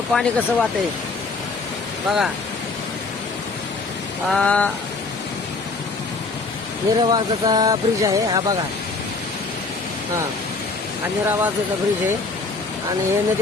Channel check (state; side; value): quieter; right; 3.8 dB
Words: कसं वाहतंय बघा. निरावाजाचा ब्रिज आहे हा बघा. हा निरावाजाचा ब्रिज आहे आणि हे